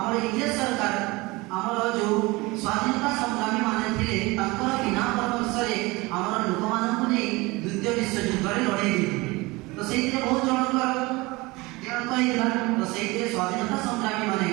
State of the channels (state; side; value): quieter; left; 23.1 dB